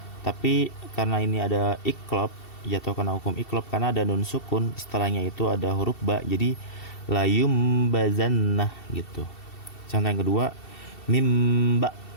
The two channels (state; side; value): late; right; 2.7 ms